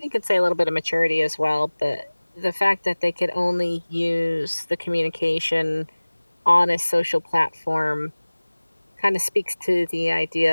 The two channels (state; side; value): inverted; both; correlation -1.00